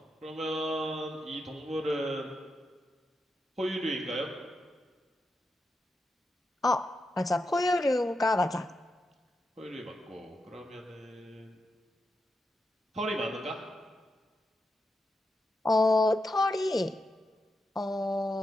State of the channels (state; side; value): normal; both; correlation 0.86